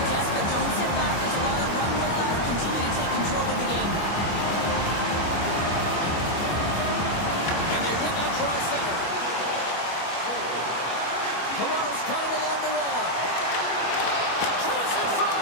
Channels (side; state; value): right; late; 25 ms